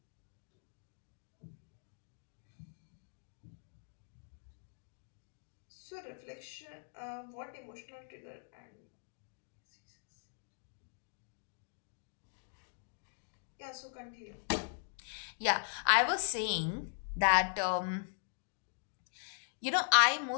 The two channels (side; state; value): right; silent; digital silence